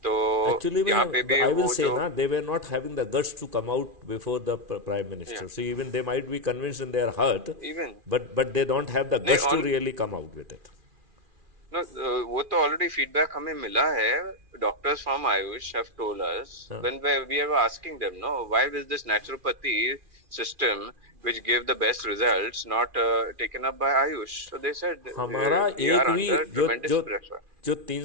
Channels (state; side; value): late; left; 2.4 ms